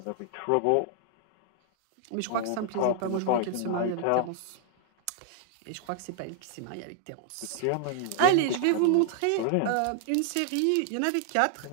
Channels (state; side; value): different; both; correlation 0.00